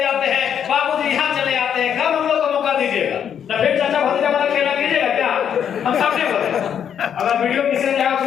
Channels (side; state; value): right; quieter; 8.6 dB